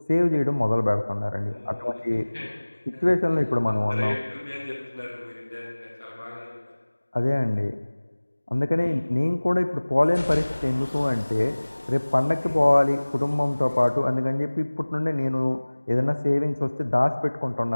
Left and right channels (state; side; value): inverted; both; correlation -1.00